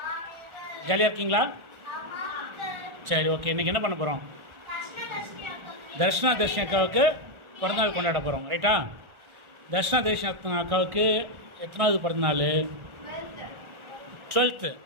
ஜாலியாக இருக்கீங்களா? சரி, ஓகே. இன்றைக்கி என்ன பண்ண போகிறோம்? தர்ஷனா தர்ஷினி அக்காவுக்கு பிறந்தநாள் கொண்டாட போகிறோம், ரைட்டா? தர்ஷனா தர்ஷினி அக்காவுக்கு எத்தனாவது பிறந்தநாள்? 12th,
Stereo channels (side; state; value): left; late; 1.4 ms